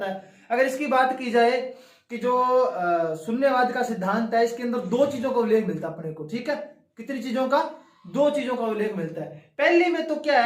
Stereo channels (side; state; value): both; identical; correlation 1.00